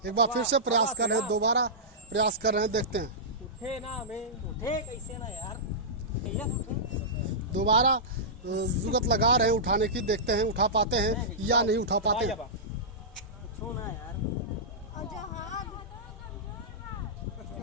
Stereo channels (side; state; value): both; normal; correlation -0.15